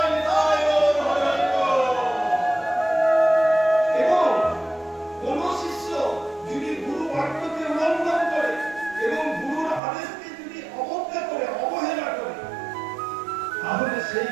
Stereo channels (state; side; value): drops out; left; at 9.8 s